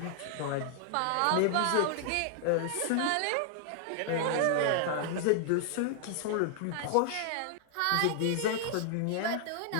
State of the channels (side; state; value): both; different; correlation -0.01